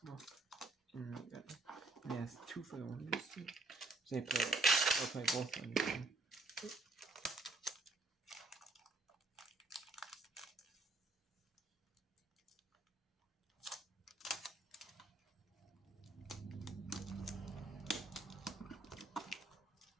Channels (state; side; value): quieter; left; 3.2 dB